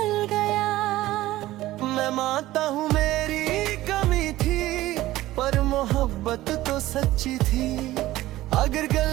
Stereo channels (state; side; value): quieter; left; 16.2 dB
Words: गया। मैं मानता हूँ मेरी कमी थी, पर मोहब्बत तो सच्ची थी। अगर